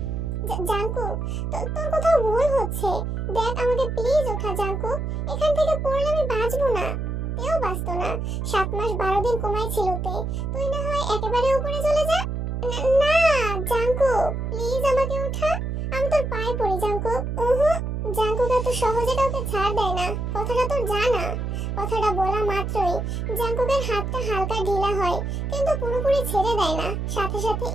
জাঙ্কুক, তোর কোথাও ভুল হচ্ছে। দেখ, আমাকে প্লিজ ওঠা জাঙ্কুক, এখান থেকে পড়লে আমি বাঁচবো না। তেও বাঁচতো না। 7 মাস 12 দিন কমাই ছিল তে। তুই না হয় একেবারে উপরে চলে যা। না জাঙ্কুক, প্লিজ আমাকে ওঠা, আমি তোর পায়ে পড়ি জাঙ্কুক। জাঙ্কুক এত সহজে কাউকে ছাড় দেয় না, কথাটা তোর জানা। কথাটা বলা মাত্রই জাঙ্কুকের হাতটা হালকা ঢিলা হয়, কিন্তু পুরোপুরি ছেড়ে দেয় না। সাথে সাথে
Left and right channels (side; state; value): right; noise; hum, 2 dB below the sound